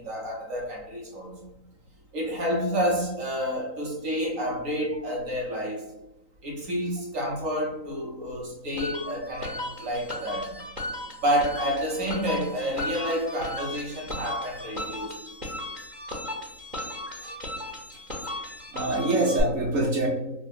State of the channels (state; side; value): late; left; 3.9 ms